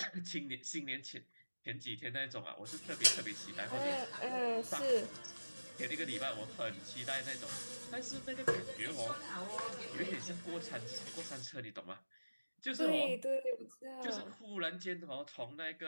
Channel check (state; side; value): inverted; both; correlation -1.00